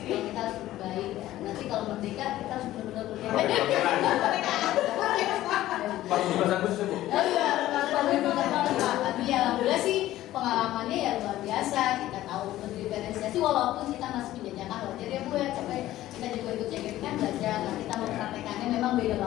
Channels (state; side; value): quieter; right; 14.7 dB